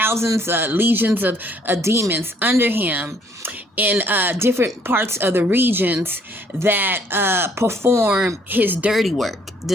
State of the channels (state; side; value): normal; both; correlation 0.64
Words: legions of demons under him in different parts of the regions that perform his dirty work.